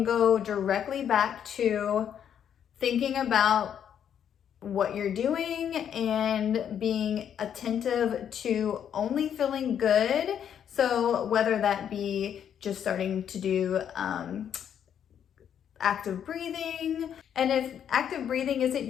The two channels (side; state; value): right; quieter; 8.9 dB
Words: go directly back to thinking about what you're doing and being attentive to only feeling good. So whether that be just starting to do active breathing, and if active breathing isn't